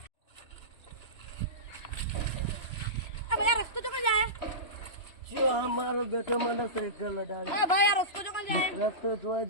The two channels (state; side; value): late; right; 3.0 ms